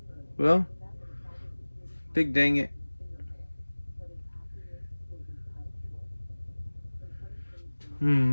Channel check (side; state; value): both; inverted; correlation -1.00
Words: Well, big dang it.